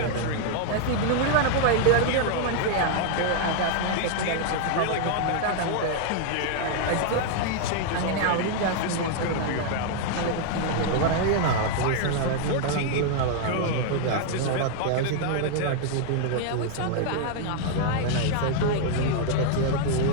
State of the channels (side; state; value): both; different; correlation 0.00